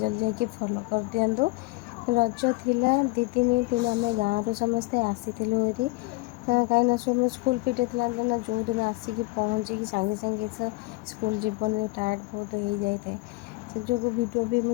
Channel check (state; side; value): quieter; right; 23.2 dB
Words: जाकि फॉलो कर दिंतु। रज थिला दी दिन तेणु आम गाँव समस्ते आसीलु ये कहीं सब स्कूल फिटे ना जो दिन आसिक पहुँचिकी सागे सागे स्कूल जीवन टायर्ड बहुत हो जाए से जो भिडियो भी